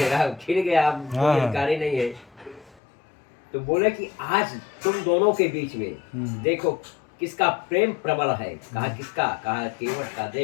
छिन गया, अब कोई अधिकारी नहीं है। तो बोले कि आज तुम दोनों के बीच में देखो किसका प्रेम प्रबल है। कहा किसका? कहा केवट का।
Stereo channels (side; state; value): right; drops out; at 2.8 s